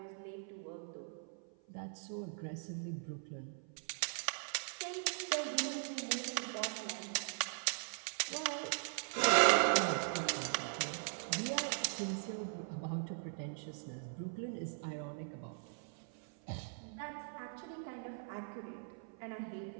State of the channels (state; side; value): silent; left; 51 dB below the other